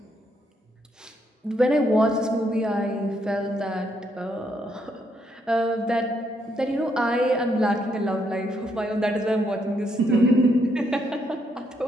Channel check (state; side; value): normal; both; correlation 0.75